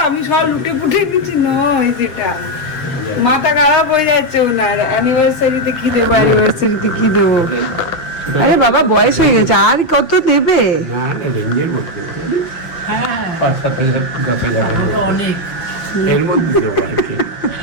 আমি সব লুটে পুটে দিচ্ছি, নয় যেটা মাথা খারাপ হয়ে যাচ্ছে ওনার, অ্যানিভার্সারিতে কি দেবো, অ্যানিভার্সারিতে কি দেবো। আরে বাবা বয়স হয়ে গেছে, আর কত দেবে? না না, রেঞ্জের মধ্যে 5-7 হাজার 10 হাজার অনেক এর মধ্যে দেবো আর কি।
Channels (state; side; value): late; right; 6.9 ms